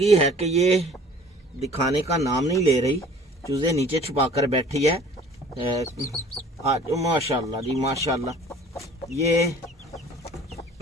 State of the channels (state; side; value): normal; both; correlation 0.49